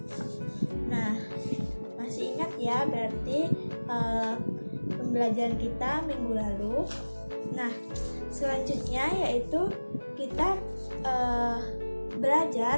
Nah, masih ingat ya berarti pembelajaran kita minggu lalu. Nah, selanjutnya yaitu kita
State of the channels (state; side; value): inverted; both; correlation -1.00